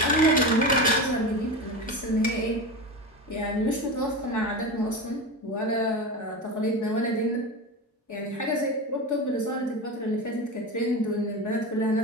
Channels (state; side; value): normal; both; correlation 0.23